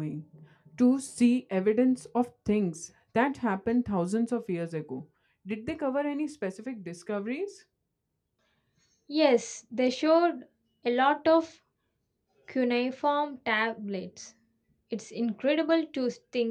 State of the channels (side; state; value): both; identical; correlation 1.00